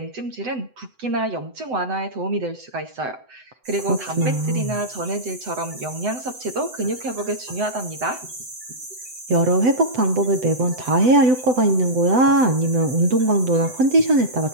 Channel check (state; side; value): late; left; 7.9 ms